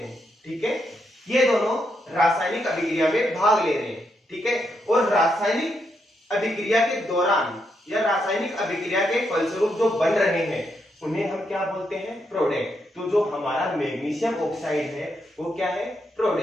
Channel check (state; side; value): normal; both; correlation 0.80